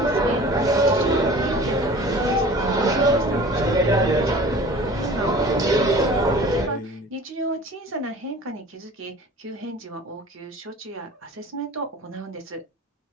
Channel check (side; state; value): both; normal; correlation 0.43